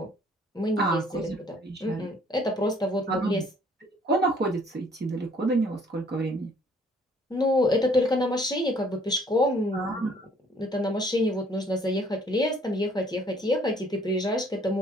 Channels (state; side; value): normal; both; correlation 0.60